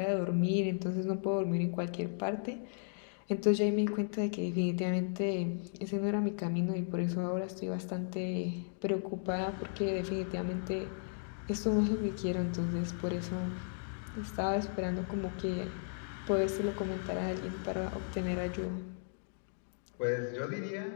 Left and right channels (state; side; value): silent; right; digital silence